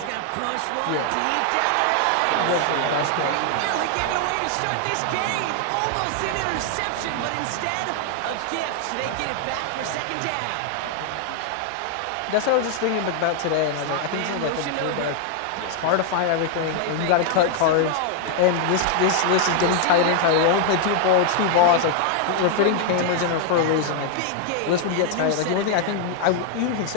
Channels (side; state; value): both; different; correlation 0.00